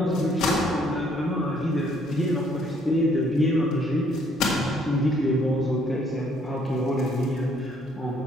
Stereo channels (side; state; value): both; normal; correlation 0.65